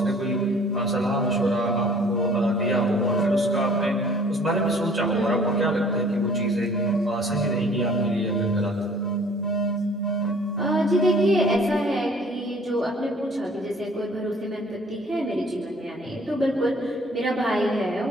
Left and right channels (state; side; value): normal; both; correlation 0.54